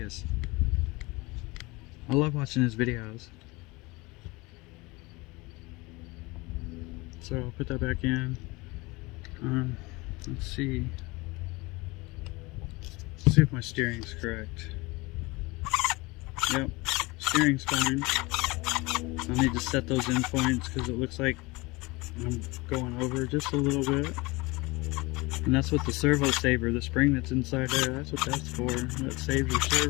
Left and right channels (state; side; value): quieter; right; 23.8 dB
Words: I love watching his videos. So I'll put that back in. Let's see. Let's see if my steering's correct. Yep, steering's fine. I need to set those in points because it looks like I'm going over just a little bit. And that's what the servo saver, the spring that's inside there, that's what that's for. That saves your